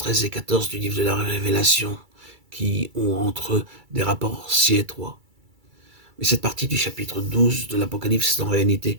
et 14 du livre de la Révélation qui ont entre eux des rapports si étroits. Mais cette partie du chapitre 12 de l'Apocalypse est en réalité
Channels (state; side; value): late; left; 2.3 ms